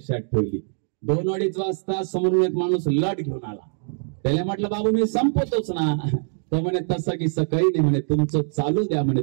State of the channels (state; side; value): silent; left; digital silence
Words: ठेवली. 2-2:30 वाजता समोरून एक माणूस लट घेऊन आला. त्याला म्हटलं बाबू मी संपवतोच ना. तो म्हणे तसं की काही नाही म्हणे, तुमचं चालू द्या म्हणे,